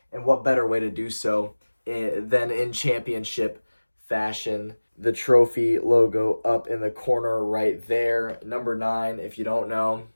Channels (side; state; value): both; inverted; correlation -1.00